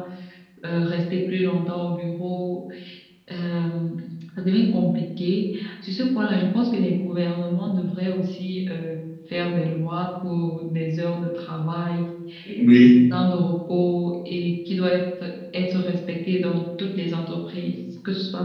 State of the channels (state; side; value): identical; both; correlation 1.00